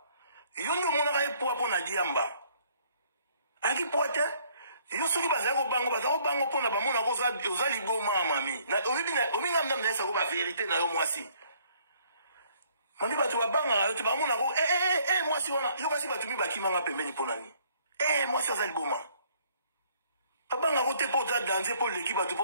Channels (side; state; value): both; inverted; correlation -0.62